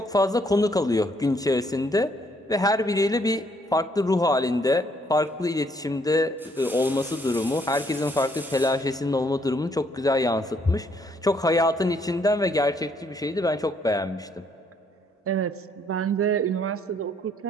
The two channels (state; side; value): normal; both; correlation 0.68